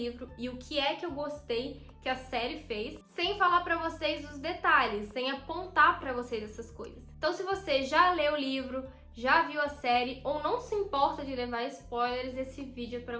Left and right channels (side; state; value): both; identical; correlation 1.00